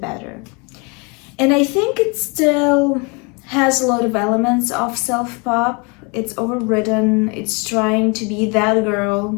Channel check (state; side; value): quieter; right; 31.2 dB